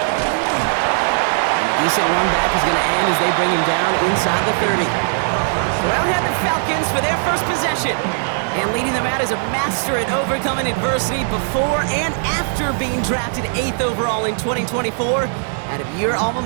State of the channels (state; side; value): silent; left; 67 dB below the other